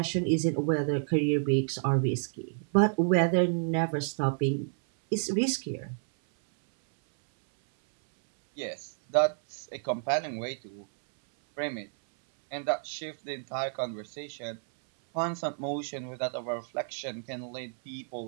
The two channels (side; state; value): left; silent; 58 dB below the other